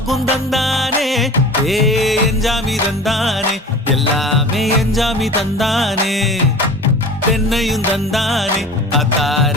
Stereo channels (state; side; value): normal; both; correlation 0.39